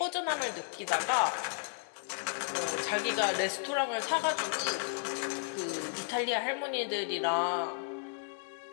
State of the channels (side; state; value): right; silent; digital silence